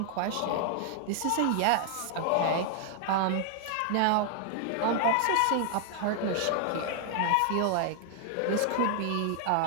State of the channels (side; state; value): both; different; correlation 0.00